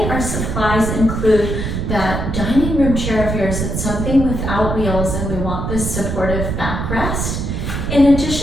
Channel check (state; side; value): noise; right; rumble, 2 dB below the sound